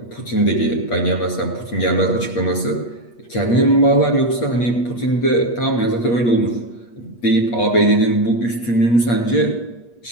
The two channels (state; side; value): late; right; 8.4 ms